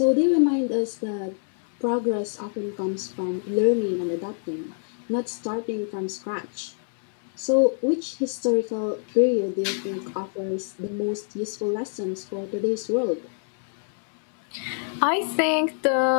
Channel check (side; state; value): right; silent; digital silence